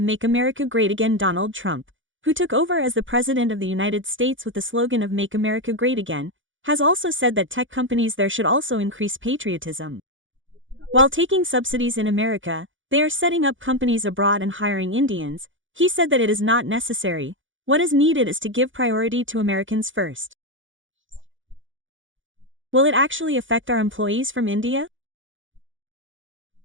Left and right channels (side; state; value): left; late; 0.56 ms